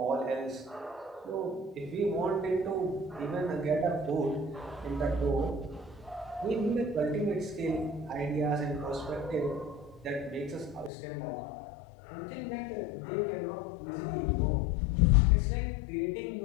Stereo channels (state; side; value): drops out; right; at 10.9 s